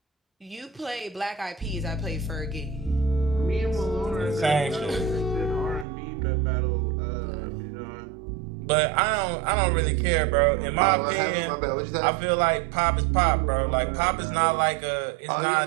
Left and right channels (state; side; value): drops out; left; at 5.9 s